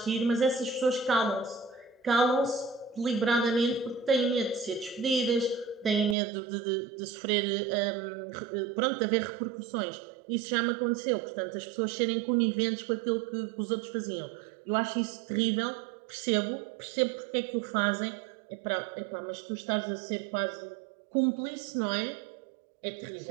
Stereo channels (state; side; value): drops out; left; at 6.2 s